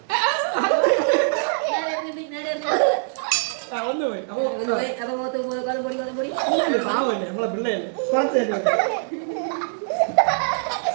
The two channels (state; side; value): silent; left; digital silence